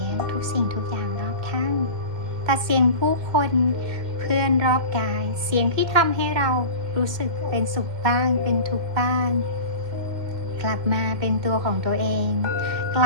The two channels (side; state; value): left; late; 2.1 ms